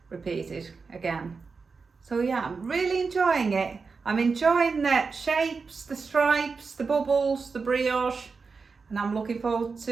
repeated again. So yeah, I'm really enjoying it. I'm enjoying the shapes, the stripes, the bubbles, the brioche, and I'm looking forward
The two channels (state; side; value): quieter; left; 4.7 dB